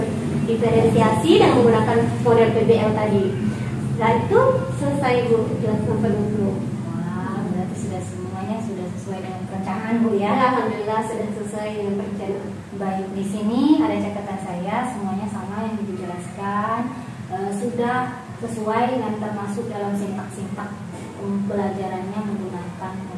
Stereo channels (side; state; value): both; identical; correlation 1.00